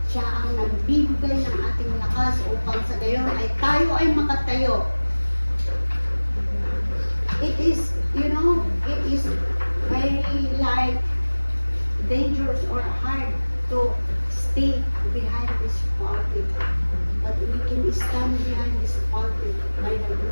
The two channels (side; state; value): both; inverted; correlation -1.00